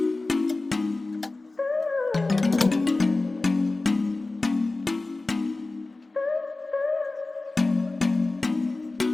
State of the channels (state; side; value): quieter; right; 3.2 dB